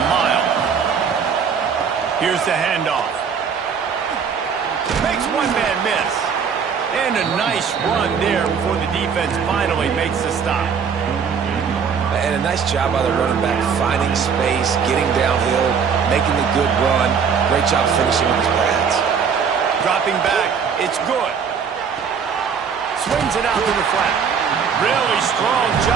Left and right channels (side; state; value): left; quieter; 6.6 dB